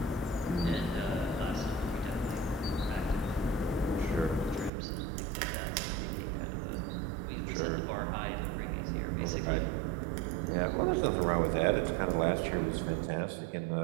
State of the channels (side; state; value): left; drops out; at 4.7 s